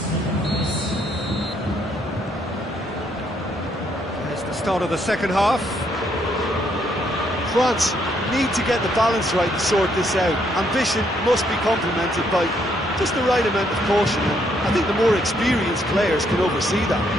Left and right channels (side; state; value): both; normal; correlation 0.72